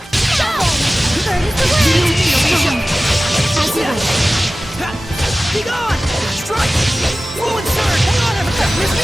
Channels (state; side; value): normal; both; correlation 0.96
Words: Be gone! Strike! Ruin Surge! Hang on, everyone! Miss me